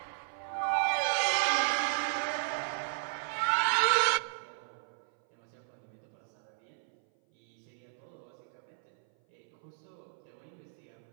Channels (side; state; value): left; silent; 55 dB below the other